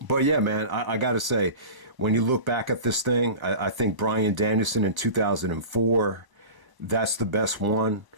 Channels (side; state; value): left; late; 1.1 ms